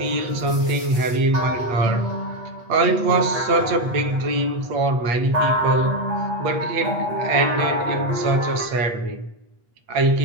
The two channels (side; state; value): left; late; 8.2 ms